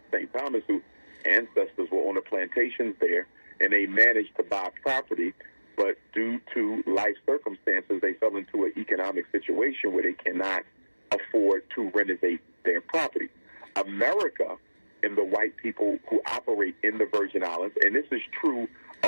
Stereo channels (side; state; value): both; inverted; correlation -1.00